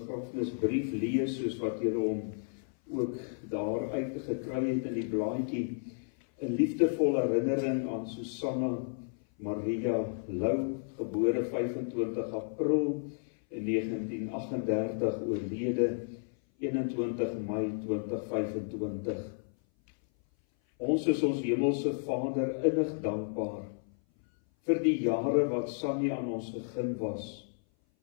lees, soos wat julle hom ook daar uitgekry het in die blaadjie. 'n liefdevolle herinnering aan Susanna Maria Lou, gebore 25 April in 1938, oorlede 21 Mei 2025. Ons is ons hemelse Vader innig dankbaar vir die jare wat Sannie aan ons gegeen was.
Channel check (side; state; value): right; silent; 56 dB below the other